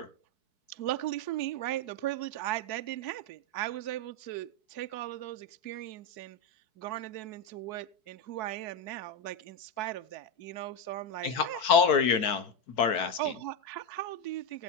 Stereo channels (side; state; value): right; late; 4.7 ms